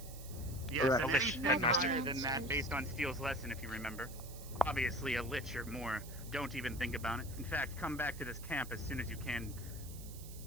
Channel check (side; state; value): right; noise; hiss, 15 dB below the sound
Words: Yes, Correct. and anything Headmaster. higher than that based on Steele's lesson, if you remember. Obviously, a lich or more. Don't even think about it. In fact, come back to this camp as soon as you can,